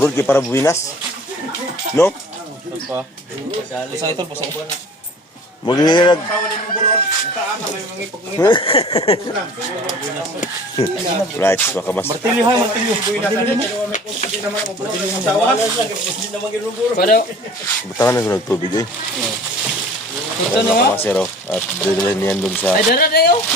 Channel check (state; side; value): normal; both; correlation 0.46